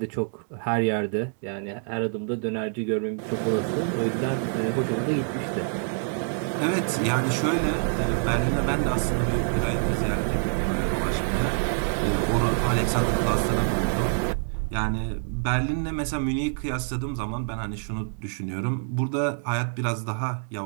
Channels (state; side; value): silent; left; digital silence